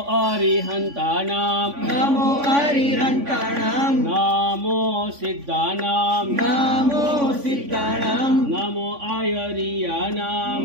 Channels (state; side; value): late; left; 3.5 ms